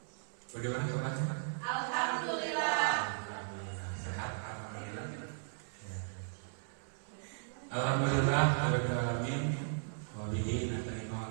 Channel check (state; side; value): silent; left; 53 dB below the other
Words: Bagaimana kabarnya? Alhamdulillah. Alhamdulillah. Sehat alhamdulillah. Ya. Alhamdulillah rabbil alamin. Wa bihi nasta'inu